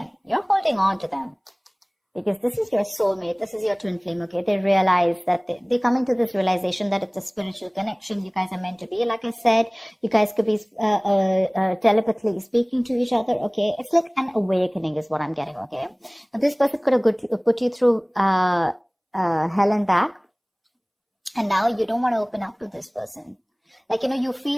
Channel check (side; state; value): both; identical; correlation 1.00